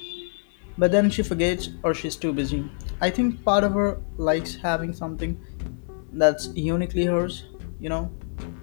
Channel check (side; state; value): right; silent; digital silence